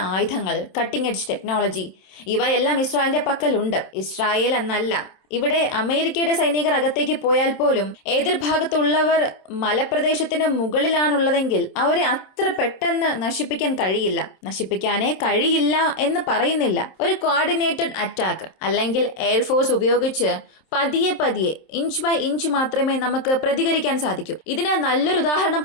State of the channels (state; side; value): late; right; 27 ms